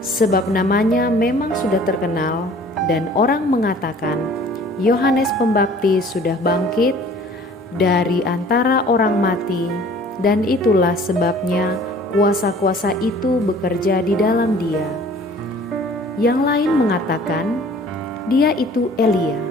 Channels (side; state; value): both; normal; correlation 0.50